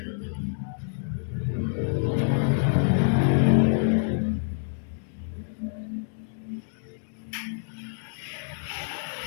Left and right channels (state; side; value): silent; right; digital silence